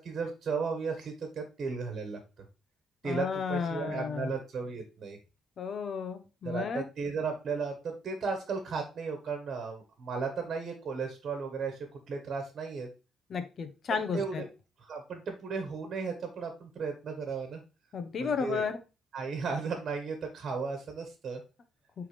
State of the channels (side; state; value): both; normal; correlation 0.68